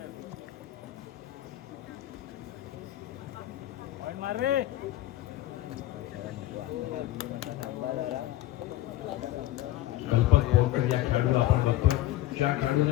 कल्पक बोरकर या खेळाडूला आपण बघतोय. ज्या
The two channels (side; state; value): right; quieter; 14.9 dB